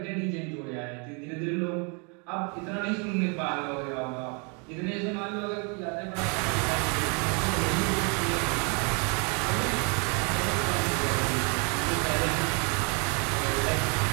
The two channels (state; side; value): quieter; left; 34.9 dB